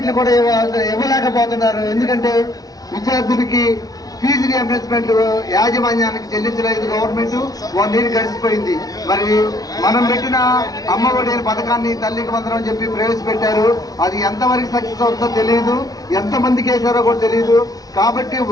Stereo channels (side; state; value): right; late; 0.18 ms